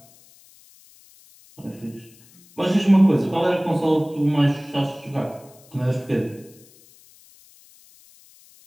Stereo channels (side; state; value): left; noise; hiss, 27 dB below the sound